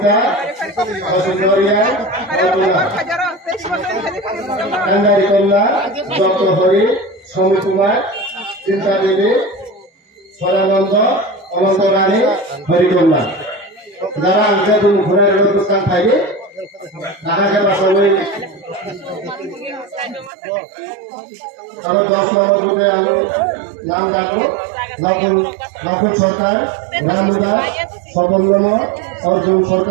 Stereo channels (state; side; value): drops out; left; at 20.3 s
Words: বসুন্ধরিয়া কান্দারি কন্যা দত্ত হরি সমী কুমার চিন্তা দেবী সরানন্দ অনন্ত রানী হরিকন্যা যারা আনছে তুমি ঘুরে অনুষ্ঠান থাকবে তাহাকে সবাই আবার 10 নম্বর বুথে আমি নাম ডাকবো নকুল সরকার রামু দাস স্বপন নম অর্জুন